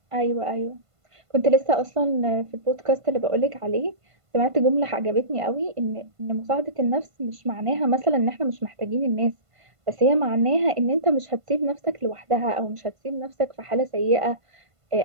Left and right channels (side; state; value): left; late; 1.5 ms